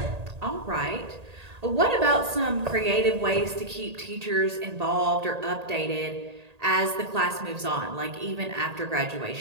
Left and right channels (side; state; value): left; late; 1.8 ms